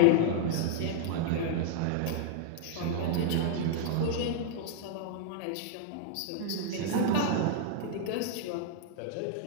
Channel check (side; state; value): both; different; correlation -0.01